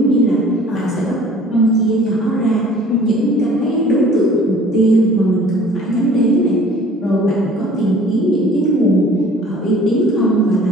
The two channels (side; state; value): both; normal; correlation 0.51